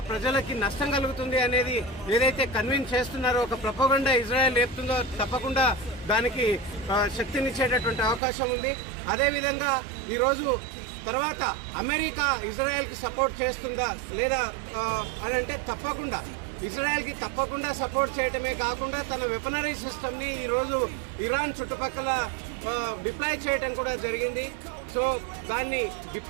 ప్రజలకి నష్టం కలుగుతుంది అనేది ఏదైతే కన్విన్స్ చేస్తున్నారో, ఒక ప్రపోగండా ఇజ్రాయెల్ లేపుతుందో తప్పకుండా దానికి శక్తినిచ్చేటటువంటి అవకాశం ఉంది. అదేవిధంగా ఈరోజు తర్వాత అమెరికా ఇజ్రాయెల్కి సపోర్ట్ చేస్తుందా లేదా అని అంటే తప్పకుండా ఇజ్రాయెల్కి సపోర్ట్ చేయటమే కాకుండా తన వెపనరీ సిస్టమ్ని ఈరోజు ఇరాన్ చుట్టుపక్కల డిప్లాయ్ చేయటం కూడా జరిగింది. సో దాన్ని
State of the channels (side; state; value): left; drops out; at 8.2 s